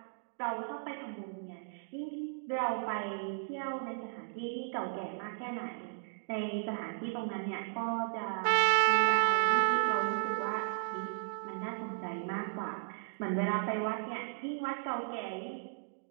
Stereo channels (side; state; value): left; silent; digital silence